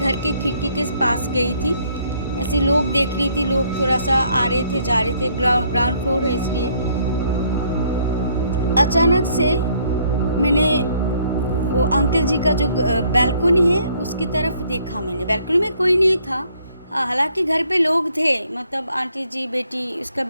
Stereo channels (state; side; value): inverted; both; correlation -0.66